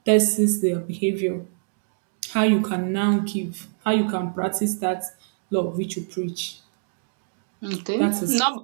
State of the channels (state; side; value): silent; left; digital silence